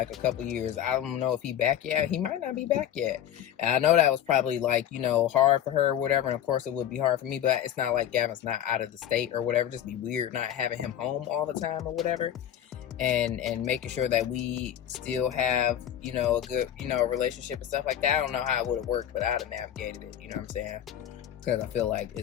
a couple years. I don't know if he back yet. He might not be back yet. And I know that was probably like, hard for her or whatever. And of course it would be hard for me, but it's not like Gavin's not out of the state or whatever. Just be weird not having him home all the time or whatever. And making sure that we still have, a good, relationship and stuff like that. I don't know how it would have worked, but I'd have navigated it, you know what I'm saying? Because I feel like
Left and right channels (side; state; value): right; quieter; 10.6 dB